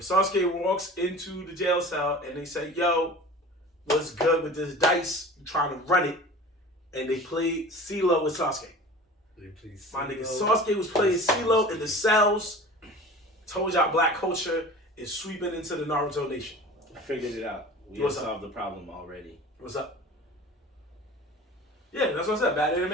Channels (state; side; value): normal; both; correlation 0.39